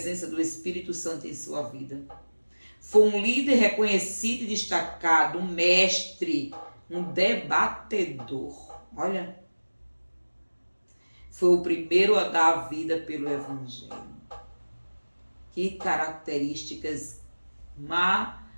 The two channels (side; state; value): both; inverted; correlation -1.00